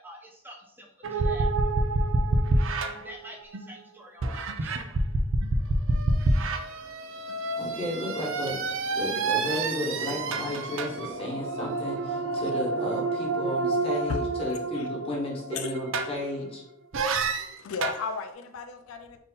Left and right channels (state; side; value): normal; both; correlation 0.42